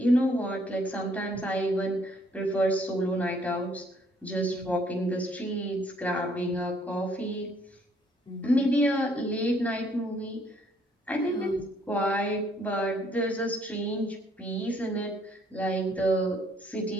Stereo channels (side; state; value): both; normal; correlation 0.65